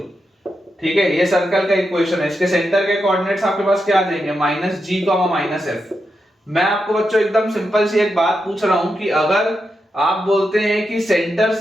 ठीक है, ये सर्कल का इक्वेशन है। इसके सेंटर के कोऑर्डिनेट्स आपके पास क्या आ जाएंगे, -g, -f। मैं आपको बच्चों एकदम सिंपल सी एक बात पूछ रहा हूं कि अगर आप बोलते हैं कि सेंटर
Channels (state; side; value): normal; both; correlation 0.86